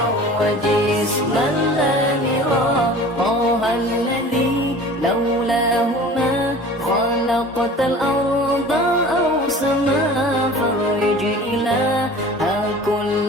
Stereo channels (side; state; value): both; normal; correlation 0.42